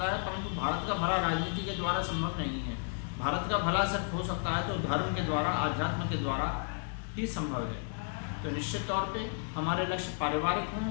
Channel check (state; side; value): silent; right; 56 dB below the other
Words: है, परंतु भारत का भला राजनीति के द्वारा संभव नहीं है। भारत का भला सिर्फ हो सकता है तो धर्म के द्वारा, आध्यात्म के द्वारा ही संभव है। तो निश्चित तौर पे हमारे लक्ष्य पारिवारिक